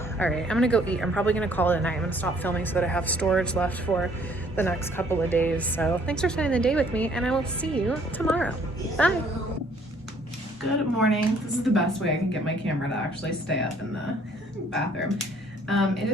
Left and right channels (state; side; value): normal; both; correlation 0.61